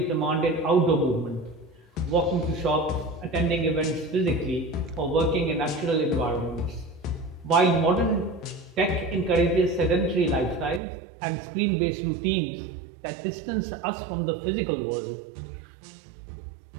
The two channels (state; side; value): drops out; left; at 10.8 s